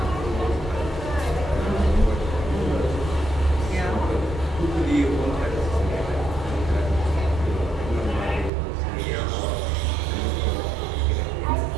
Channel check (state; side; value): drops out; left; at 8.5 s